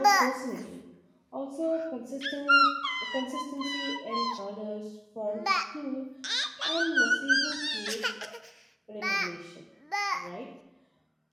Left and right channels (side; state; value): both; identical; correlation 1.00